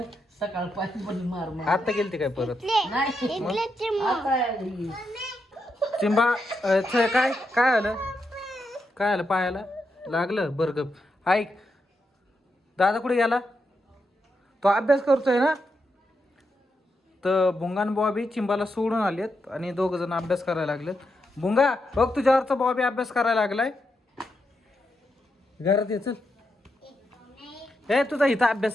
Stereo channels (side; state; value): both; normal; correlation 0.84